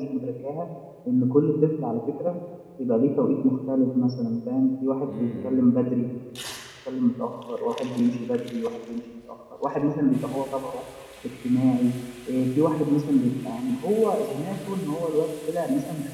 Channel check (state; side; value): identical; both; correlation 1.00